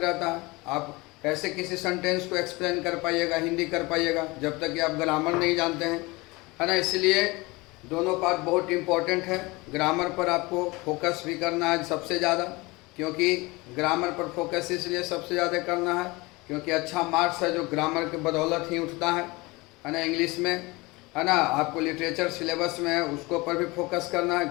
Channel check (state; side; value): quieter; right; 23.6 dB